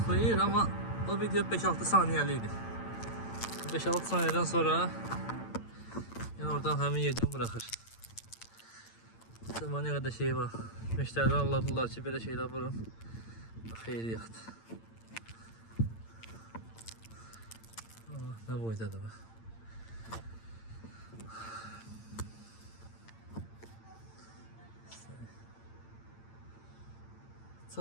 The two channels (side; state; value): right; late; 8.8 ms